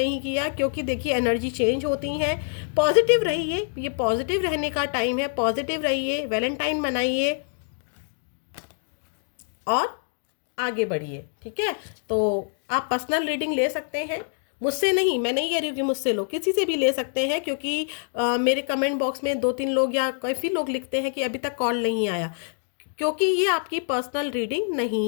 किया, क्योंकि देखिए एनर्जी चेंज होती हैं। पॉजिटिव रहिए, ये पॉजिटिव रहने का टाइम है, पॉजिटिव रहिए, वैलेंटाइन मनाइए और आगे बढ़िए। ठीक है, तो आप पर्सनल रीडिंग ले सकते हैं, मुझसे नहीं, मैं नहीं कह रही हूँ कि मुझसे लो, किसी से भी ले सकते हैं, क्योंकि मेरे कमेंट बॉक्स में 2-3 लोग या काफ़ी लोग लिखते हैं कि अभी तक कॉल नहीं आया, क्योंकि ये आपकी पर्सनल रीडिंग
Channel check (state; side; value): silent; right; digital silence